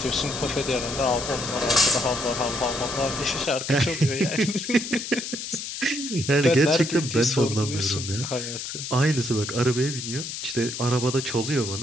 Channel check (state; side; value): noise; left; hiss, 7 dB below the sound